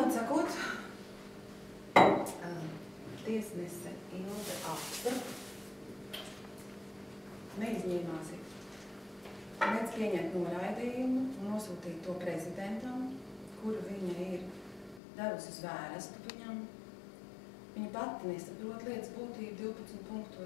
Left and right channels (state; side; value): drops out; right; at 15.0 s